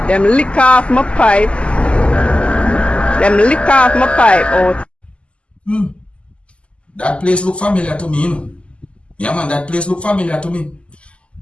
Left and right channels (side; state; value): right; late; 0.055 ms